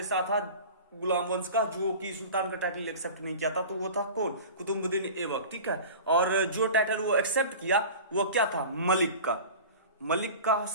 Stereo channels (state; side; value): inverted; both; correlation -0.36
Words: था गुलाम वंश का जो कि सुल्तान का टाइटल एक्सेप्ट नहीं किया था, तो वो था कौन? कुतुबुद्दीन ऐबक। ठीक है, और जो टाइटल वो एक्सेप्ट किया वो क्या था? मलिक का